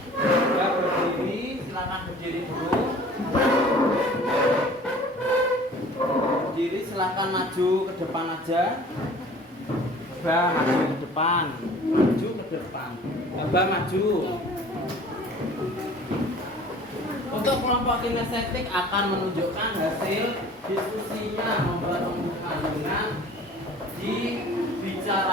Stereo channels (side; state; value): both; normal; correlation 0.47